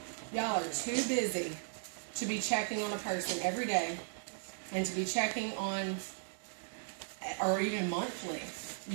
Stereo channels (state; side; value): silent; left; digital silence